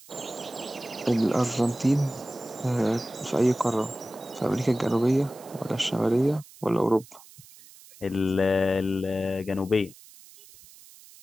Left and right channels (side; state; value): right; noise; hiss, 22 dB below the sound